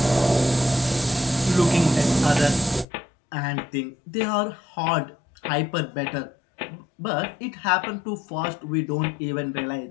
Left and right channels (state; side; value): drops out; right; at 2.9 s